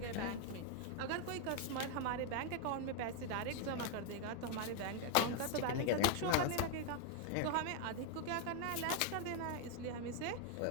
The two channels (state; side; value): different; both; correlation 0.00